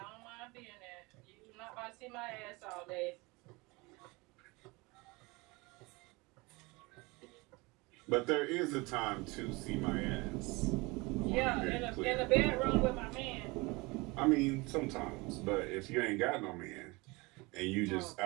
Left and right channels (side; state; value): left; quieter; 25.0 dB